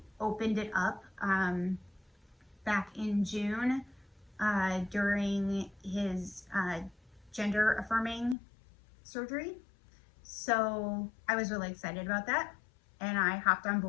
opened it up back in June during his gender affirming surgery. So I was really excited about that, and I hopped on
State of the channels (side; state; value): right; drops out; at 8.3 s